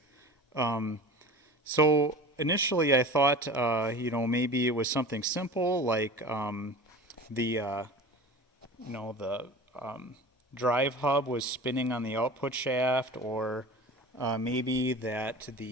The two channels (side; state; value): both; normal; correlation 0.36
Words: So initially, I thought, maybe it was something simple like the drive hub was spinning on the output shaft, or maybe that